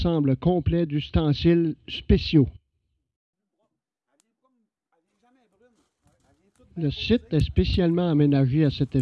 complet d'ustensiles spéciaux. Le site est spécialement aménagé à cet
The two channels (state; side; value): identical; both; correlation 1.00